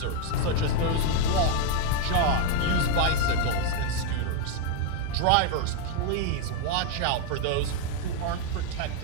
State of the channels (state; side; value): different; both; correlation 0.01